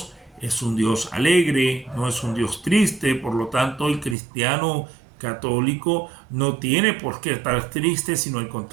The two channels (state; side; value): drops out; left; at 4.2 s